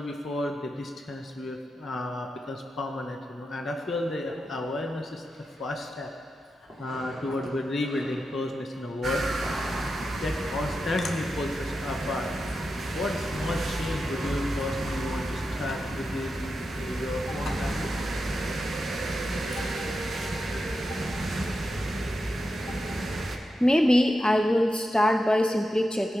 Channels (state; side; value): normal; both; correlation 0.89